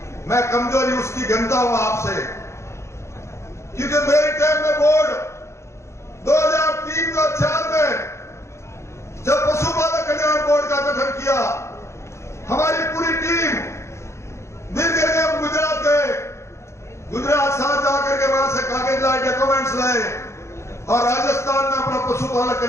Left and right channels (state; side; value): late; right; 0.13 ms